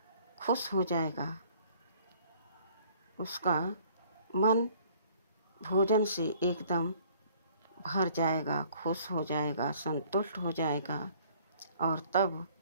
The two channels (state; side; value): inverted; both; correlation -0.57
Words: खुश हो जाएगा। उसका मन भोजन से एकदम भर जाएगा, खुश हो जाएगा, संतुष्ट हो जाएगा। और तब